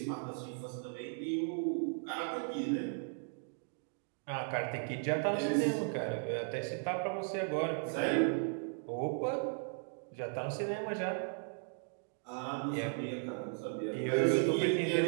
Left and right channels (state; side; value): silent; left; 54 dB below the other